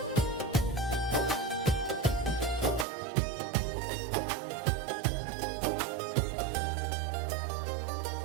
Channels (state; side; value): drops out; left; at 2.9 s